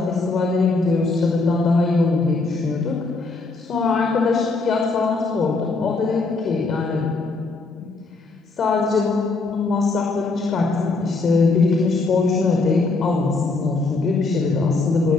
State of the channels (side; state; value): right; quieter; 3.7 dB